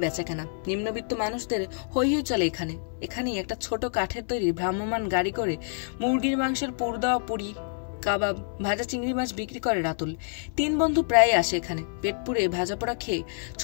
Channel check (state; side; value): silent; right; 60 dB below the other